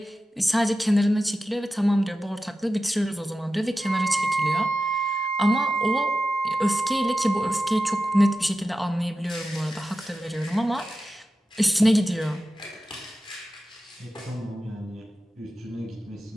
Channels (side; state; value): both; normal; correlation 0.93